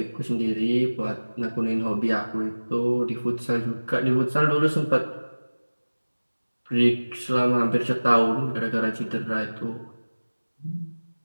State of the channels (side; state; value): both; inverted; correlation -1.00